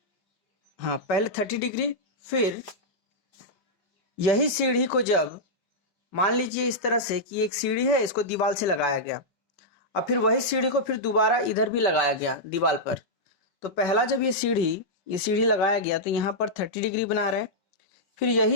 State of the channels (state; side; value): late; right; 5.3 ms